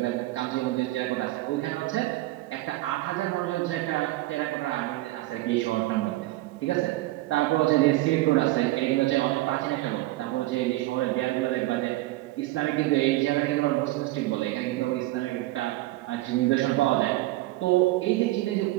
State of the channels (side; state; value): left; quieter; 18.1 dB